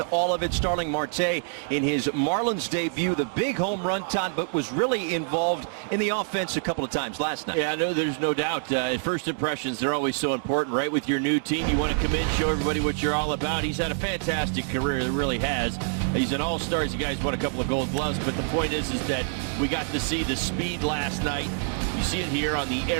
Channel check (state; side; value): silent; left; digital silence